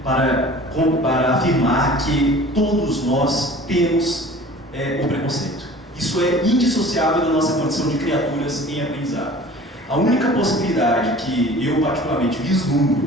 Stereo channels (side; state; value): both; normal; correlation 0.44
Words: para afirmar que todos nós temos o preconceito. Isso é indissociável da nossa condição de criaturas em aprendizado. A única possibilidade que eu particularmente